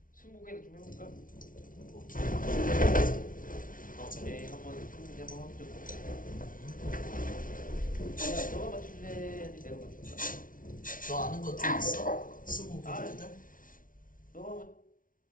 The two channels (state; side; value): late; right; 0.39 ms